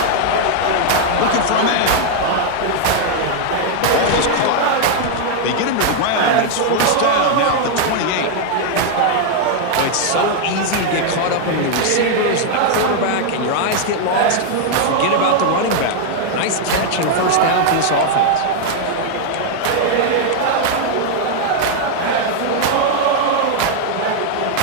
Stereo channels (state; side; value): different; both; correlation 0.00